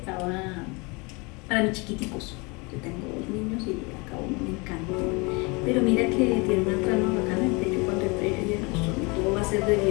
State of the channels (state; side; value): quieter; right; 28.2 dB